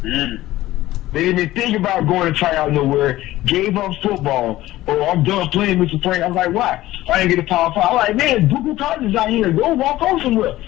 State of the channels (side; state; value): right; quieter; 16.0 dB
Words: They didn't even think about going to try out nowhere, gave up football, or I'm done playing with your friend. I was like, why? I didn't get a Power 5. I'm like, man, Google colleges out here, go walk on somewhere.